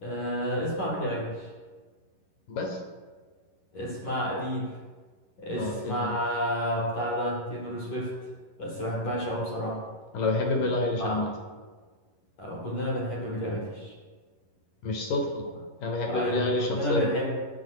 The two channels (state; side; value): late; right; 11 ms